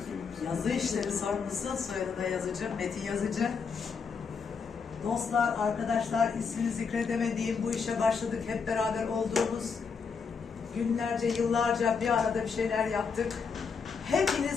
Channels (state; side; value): quieter; right; 5.6 dB